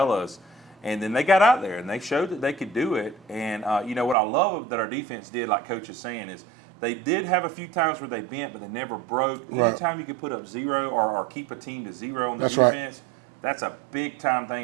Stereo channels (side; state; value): left; drops out; at 4.2 s